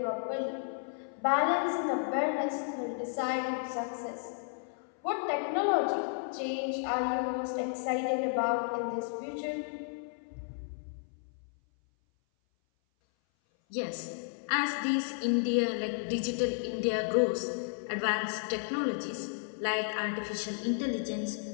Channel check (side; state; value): right; silent; 56 dB below the other